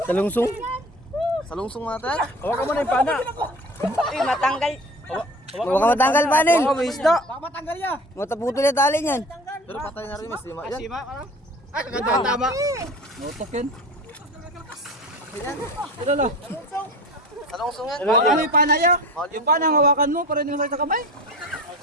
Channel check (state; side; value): normal; both; correlation 0.37